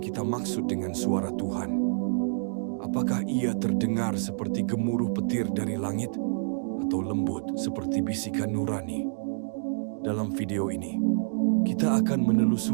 kita maksud dengan suara Tuhan? Apakah ia terdengar seperti gemuruh petir dari langit, atau lembut seperti bisikan nurani? Dalam video ini, kita akan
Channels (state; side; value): silent; left; digital silence